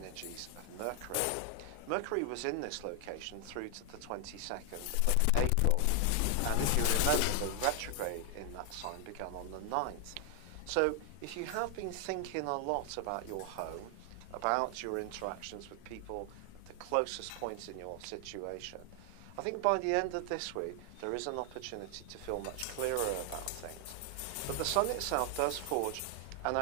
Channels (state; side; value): different; both; correlation 0.00